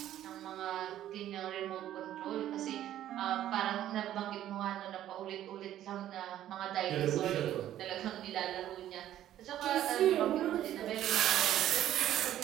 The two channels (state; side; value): quieter; left; 12.2 dB